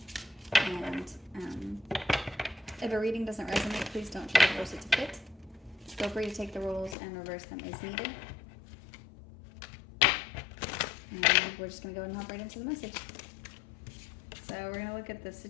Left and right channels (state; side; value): drops out; right; at 7.0 s